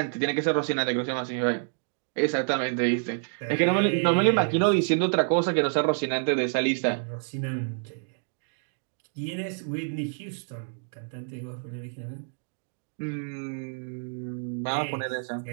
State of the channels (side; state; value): left; silent; digital silence